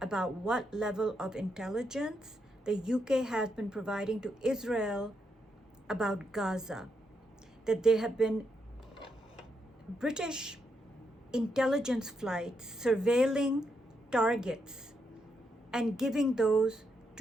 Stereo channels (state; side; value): normal; both; correlation 0.81